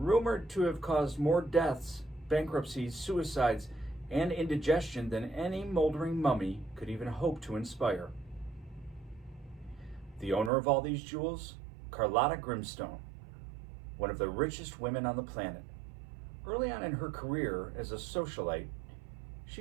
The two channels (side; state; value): left; drops out; at 10.5 s